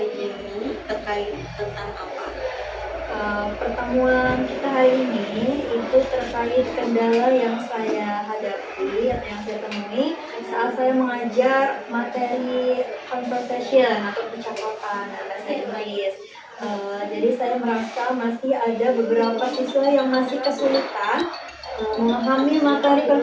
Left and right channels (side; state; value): both; identical; correlation 1.00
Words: ini terkait tentang apa? Pertemuan kita hari ini itu terkait kendala yang saya hadapi atau yang saya temui saat saya mengajar materi conversation atau percakapan bahasa Inggris. Jadi saya merasa masih ada beberapa siswa yang masih kesulitan memahami materi